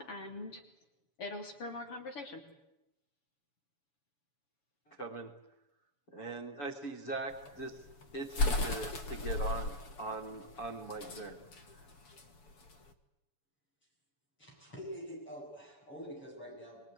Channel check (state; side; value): late; right; 7.0 ms